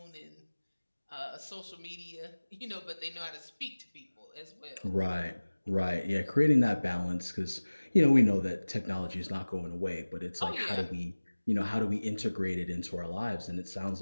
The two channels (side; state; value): both; inverted; correlation -1.00